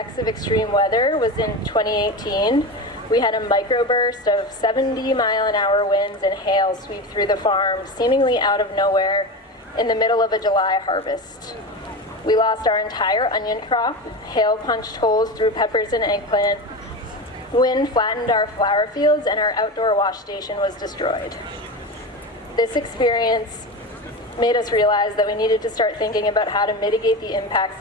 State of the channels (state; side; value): normal; both; correlation 0.23